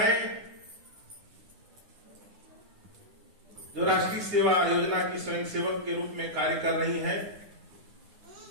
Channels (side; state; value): left; late; 9.8 ms